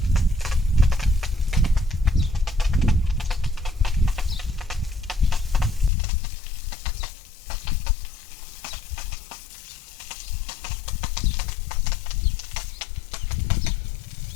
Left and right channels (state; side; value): drops out; right; at 5.9 s